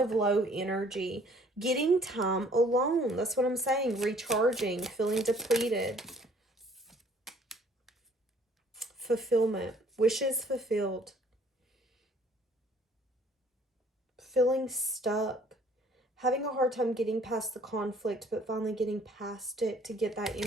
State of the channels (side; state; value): both; normal; correlation 0.58